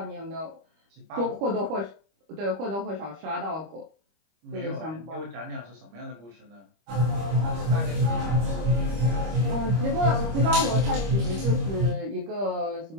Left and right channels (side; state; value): left; late; 25 ms